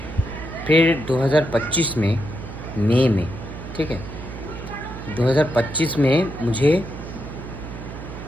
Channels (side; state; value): right; noise; hum, 11 dB below the sound